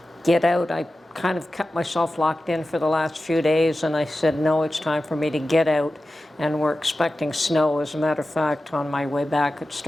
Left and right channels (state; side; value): normal; both; correlation 0.94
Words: get out. I kind of kept myself locked in for the last few days, and I said, no, it's time for me to get out. And we're expecting snow. As a matter of fact, on my way back, it